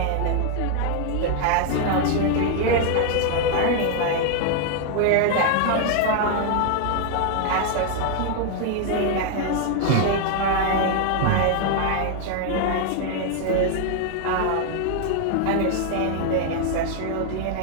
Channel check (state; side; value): different; both; correlation 0.00